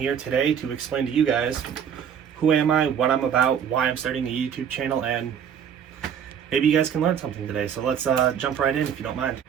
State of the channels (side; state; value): left; quieter; 8.2 dB